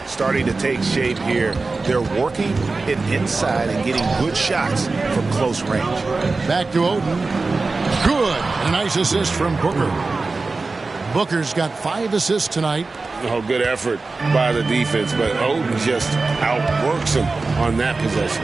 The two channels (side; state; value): left; quieter; 3.8 dB